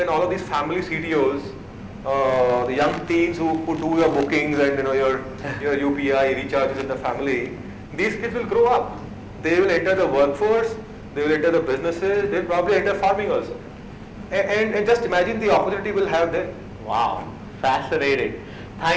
all of these family CTOs, the young teens who do your bookings and your UPI recharges in the family, these kids will grow up. They will enter the workforce, they will enter the businesses, they'll probably enter farming also. And just imagine the opportunity we'll have then. Wow, fascinating.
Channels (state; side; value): identical; both; correlation 1.00